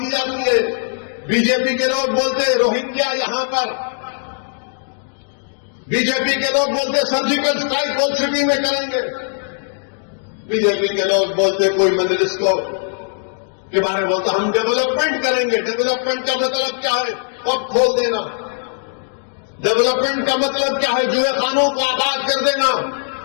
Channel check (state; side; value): silent; right; digital silence